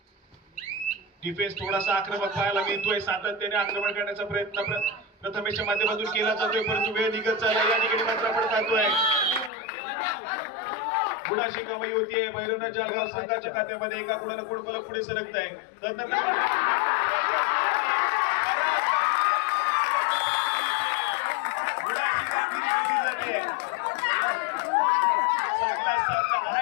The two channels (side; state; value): right; drops out; at 9.5 s